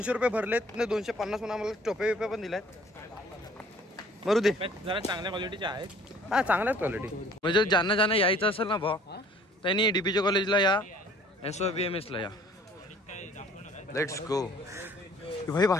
रुपये भरलेत. 250 म्हणून आम्हाला टोपे बिपे पण दिलायत. मरू दे. जरा चांगल्या क्वालिटीचे आहेत. हा चांगल्याच क्वालिटी. म्हणजे ज्यांना यायचं असेल ना भाऊ त्यांनी DBJ कॉलेजला या. SOBMS ला या. Let's go. भाई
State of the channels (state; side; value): normal; both; correlation 0.54